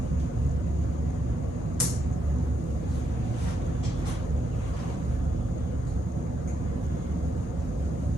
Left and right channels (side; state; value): both; normal; correlation 0.79